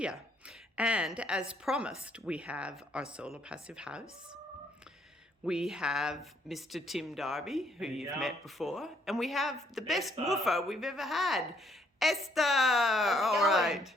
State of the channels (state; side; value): normal; both; correlation 0.68